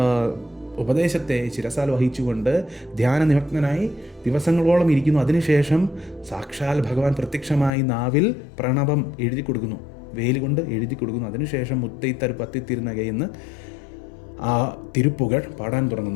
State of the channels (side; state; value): right; drops out; at 7.7 s